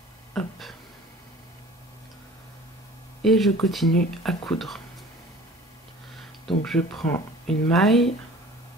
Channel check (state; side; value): normal; both; correlation 0.45